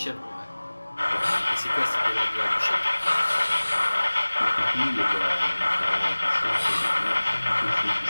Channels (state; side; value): inverted; both; correlation -1.00